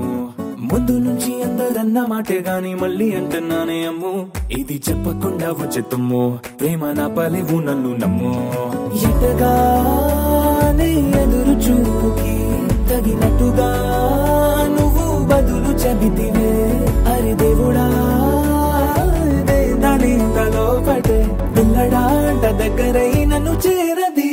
ముందు నుంచి అందరన్న మాటే గాని మళ్ళీ అంటున్నానే అమ్ము ఇది చెప్పకుండా వచ్చే తుమ్ము ప్రేమ నా పలేవు నన్ను నమ్ము ఎటగానే ఎదురు చూకి తగినట్టుగా నువ్వు బదులు చెబితివే అరే దేవుడా దానింతలో పటే పిల్లడాంట దగ్గరై నన్ను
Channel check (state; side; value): identical; both; correlation 1.00